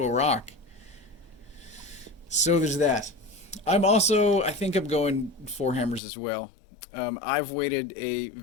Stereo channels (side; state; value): right; drops out; at 6.0 s